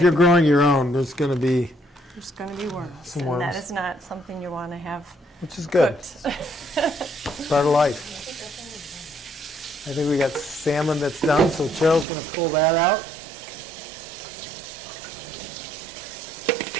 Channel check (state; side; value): drops out; left; at 12.1 s